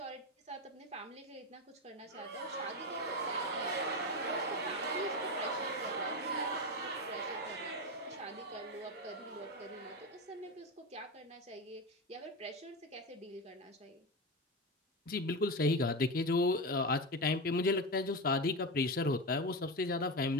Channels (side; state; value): both; normal; correlation 0.18